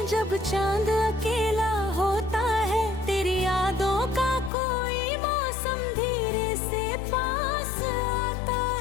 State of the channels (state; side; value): drops out; right; at 4.5 s